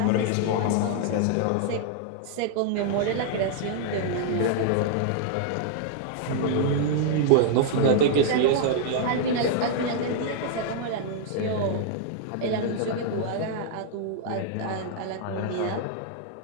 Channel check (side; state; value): both; different; correlation -0.01